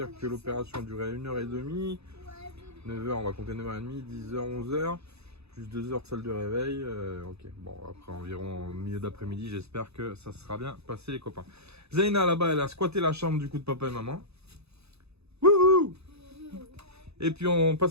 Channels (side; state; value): left; late; 0.79 ms